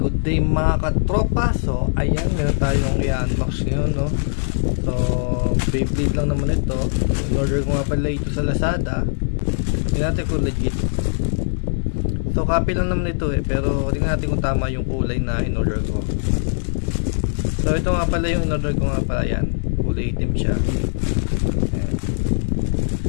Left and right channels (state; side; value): silent; right; 62 dB below the other